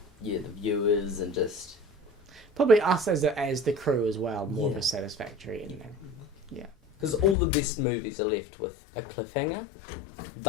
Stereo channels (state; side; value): drops out; right; at 7.4 s